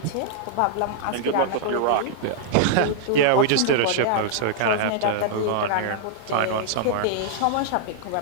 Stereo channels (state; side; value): different; both; correlation -0.01